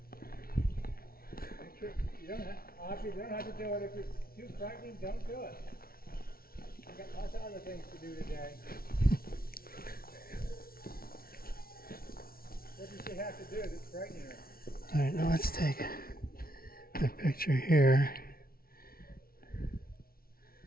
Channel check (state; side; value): late; right; 0.43 ms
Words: Make sure you don't have to do it if it's too frightening. Don't do it. You've got lots of other things to do today. What does she have to do that's frightening her? All right, now let's take a picture here.